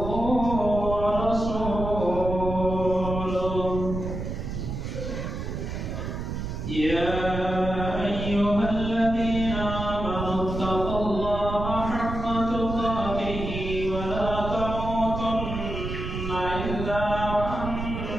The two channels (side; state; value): right; noise; rumble, 5 dB below the sound